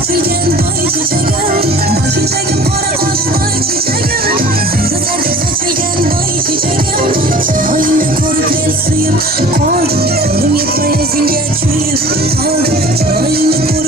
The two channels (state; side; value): normal; both; correlation 0.44